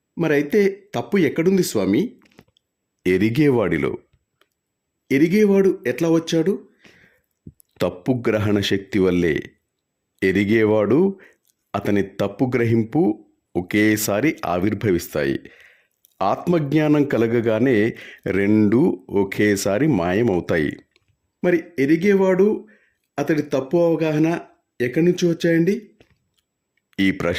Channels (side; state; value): both; identical; correlation 1.00